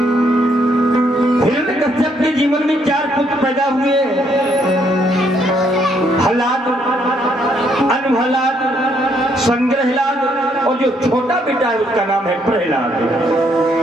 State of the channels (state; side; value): normal; both; correlation 0.71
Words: हिरण्यकश्यप के जीवन में 4 पुत्र पैदा हुए, हलाद, अनहलाद, संग्रहलाद और जो छोटा बेटा है उसका नाम है प्रहलाद।